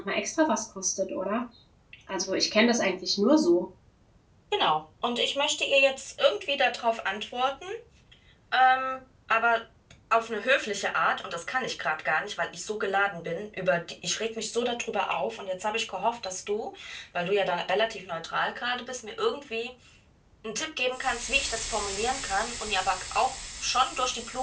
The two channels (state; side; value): identical; both; correlation 1.00